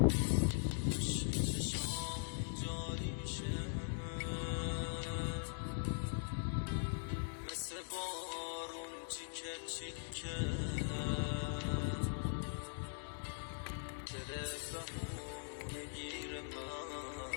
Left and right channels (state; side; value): silent; right; digital silence